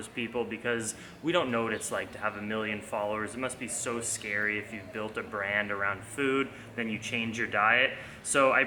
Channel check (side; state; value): both; identical; correlation 1.00